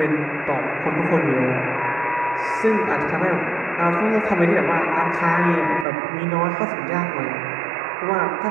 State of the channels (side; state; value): left; drops out; at 5.9 s